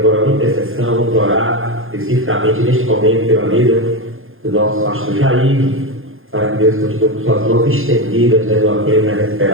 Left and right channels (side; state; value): left; late; 0.60 ms